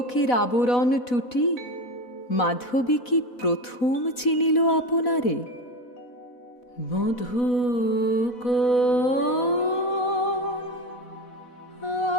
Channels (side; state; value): right; late; 4.1 ms